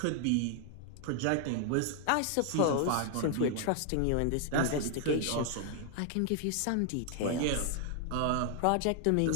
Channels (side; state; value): both; different; correlation 0.00